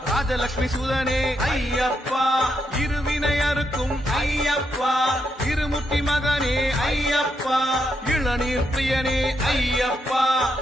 ராஜலட்சுமி சுதனே ஐயப்பா இருவினை அறுக்கும் ஐயப்பா இருமுத்தி மகனே ஐயப்பா இளநீர் பிரியனே ஐயப்பா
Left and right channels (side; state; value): both; normal; correlation 0.81